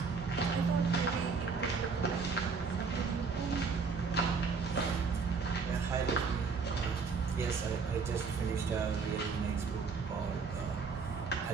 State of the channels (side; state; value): left; quieter; 5.0 dB